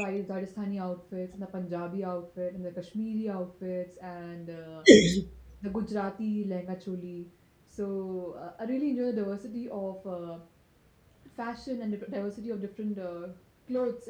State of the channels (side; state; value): both; identical; correlation 1.00